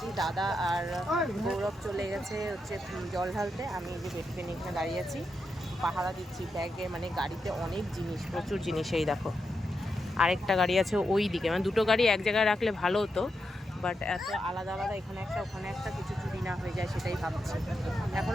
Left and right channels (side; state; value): both; normal; correlation 0.85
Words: দাদা আর গৌরব চলে গেছে হচ্ছে জল ঢালতে। আমি এই যে বেটুকে নিয়ে এখানে দাঁড়িয়ে আছি, পাহারা দিচ্ছি। ব্যাগে মানে গাড়িতে অনেক জিনিস, প্রচুর জিনিস। এই দেখো আরেকটা গাড়ি আছে ওই দিকে, মানে দুটো গাড়ি এক জায়গায় রাখলে ভালো হতো, বাট এত আলাদা আলাদা, এখানে একটা ওখানে একটা, কিছু চুরি না হয়ে যায় সেটাই ভাবছি।